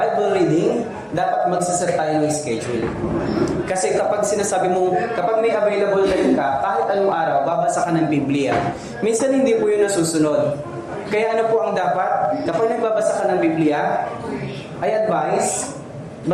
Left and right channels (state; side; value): identical; both; correlation 1.00